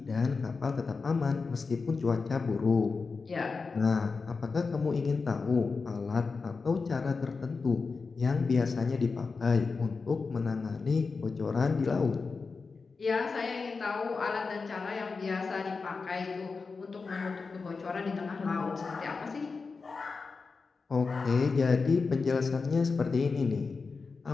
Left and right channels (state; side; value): quieter; right; 4.5 dB